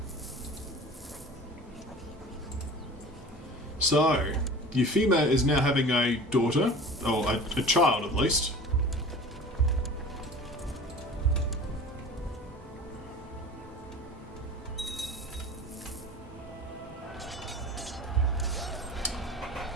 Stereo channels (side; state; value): both; normal; correlation 0.39